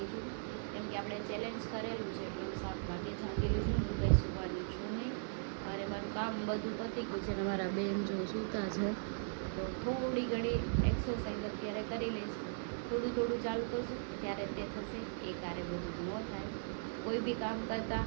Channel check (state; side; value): silent; left; digital silence